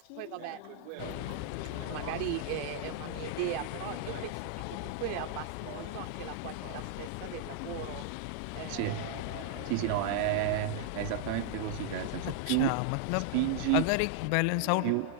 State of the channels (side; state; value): both; different; correlation -0.01